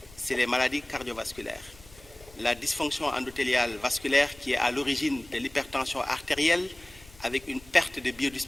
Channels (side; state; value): left; noise; rumble, 23 dB below the sound